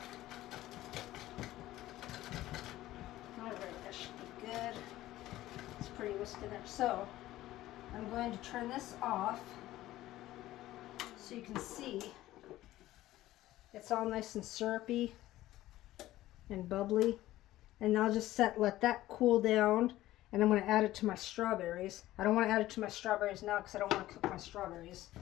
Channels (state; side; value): quieter; right; 15.5 dB